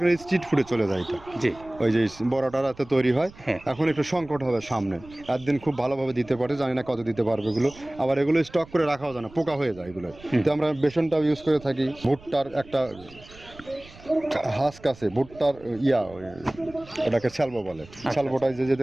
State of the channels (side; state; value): right; noise; rumble, 21 dB below the sound